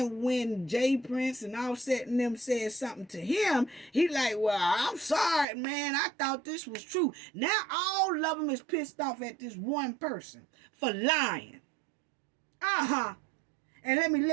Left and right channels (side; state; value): left; drops out; at 5.5 s